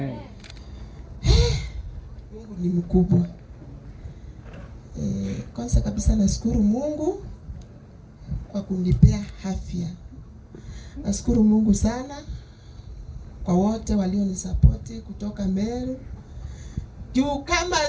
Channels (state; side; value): identical; both; correlation 1.00